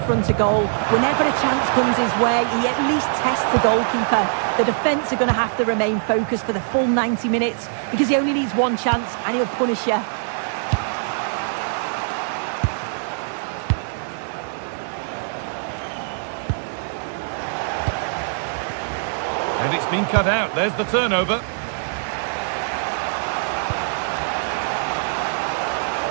of goal. Whenever a chance comes his way, he at least tests the goalkeeper. The defence are going to have to remain focused for the full 90 minutes because he only needs one chance and he'll punish you. And it's been cut out. There's the turnover.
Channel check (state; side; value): silent; left; digital silence